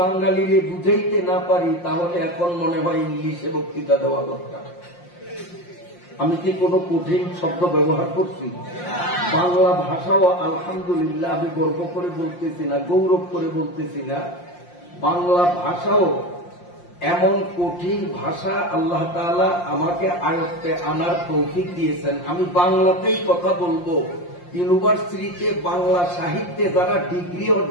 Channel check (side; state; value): right; late; 5.7 ms